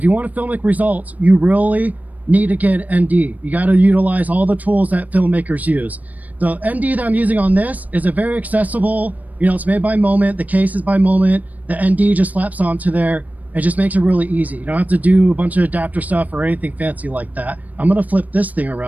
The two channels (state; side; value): late; left; 0.076 ms